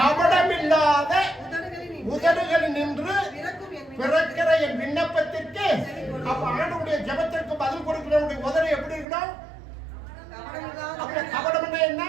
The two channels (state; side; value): drops out; left; at 9.1 s